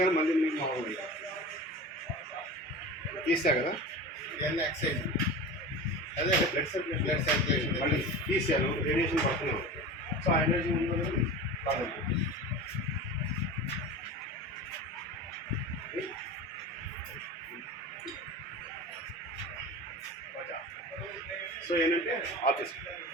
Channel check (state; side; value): normal; both; correlation 0.32